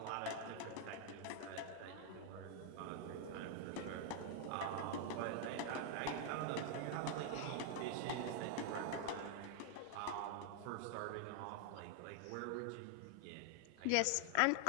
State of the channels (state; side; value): different; both; correlation 0.00